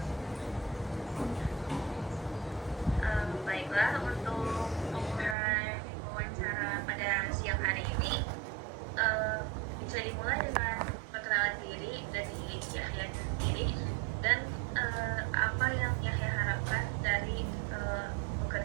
Baiklah, untuk memulai wawancara pada siang hari ini, eh, bisa dimulai dengan perkenalan diri dari Yahya sendiri dan apa yang Yahya harapkan dari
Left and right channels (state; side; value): drops out; left; at 5.4 s